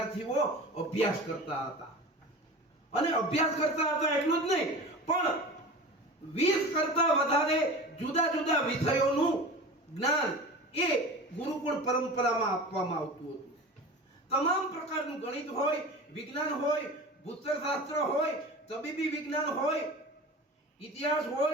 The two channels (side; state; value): both; normal; correlation 0.34